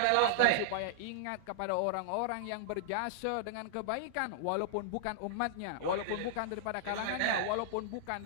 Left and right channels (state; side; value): different; both; correlation -0.01